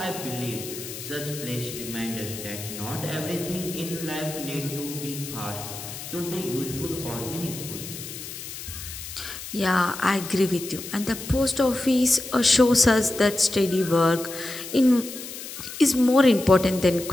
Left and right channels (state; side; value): noise; left; hiss, 10 dB below the sound